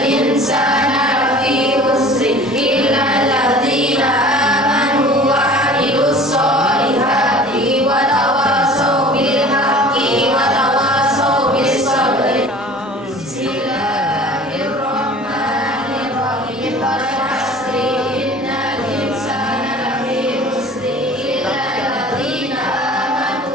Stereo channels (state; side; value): normal; both; correlation 0.44